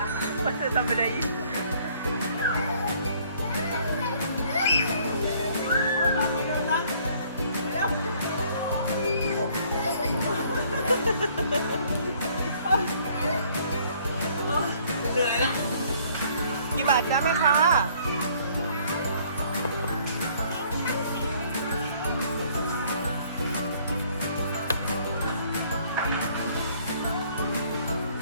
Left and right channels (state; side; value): inverted; both; correlation -0.61